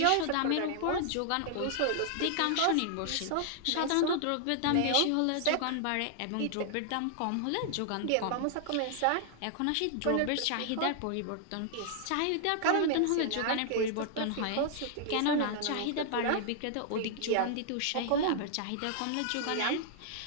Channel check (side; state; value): both; different; correlation -0.01